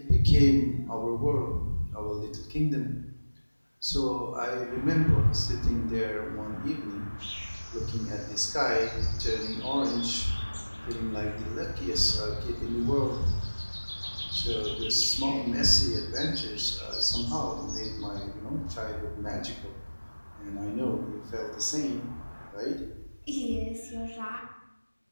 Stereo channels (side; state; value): both; inverted; correlation -1.00